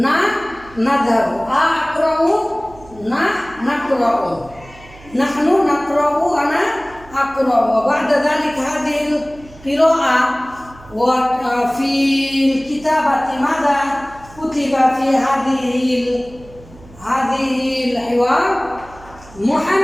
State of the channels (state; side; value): noise; right; hum, 22 dB below the sound